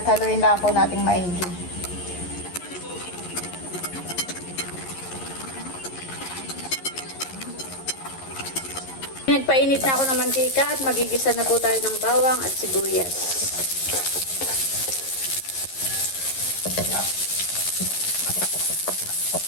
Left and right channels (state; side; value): late; right; 11 ms